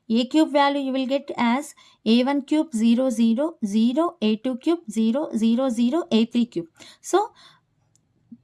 A cube value you will get as a1 cube 0 0 0, a2 cube 0 0 0, a3 cube. So,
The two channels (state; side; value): identical; both; correlation 1.00